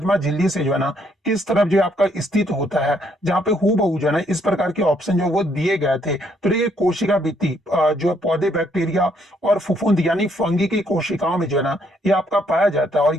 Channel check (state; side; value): normal; both; correlation 0.70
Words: झिल्ली से जो है ना किस तरफ जो आपका स्थित होता है, जहां पे हूबहू जो है ना इस प्रकार के ऑप्शन जो वो दिए गए थे। तो ये कोशिका भित्ति जो पौधे बैक्टीरिया और फफूंद यानी फंगी की कोशिकाओं में जो है ना ये आपका पाया जाता है, और